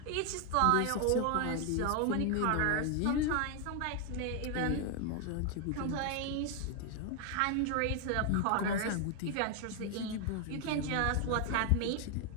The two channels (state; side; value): different; both; correlation 0.01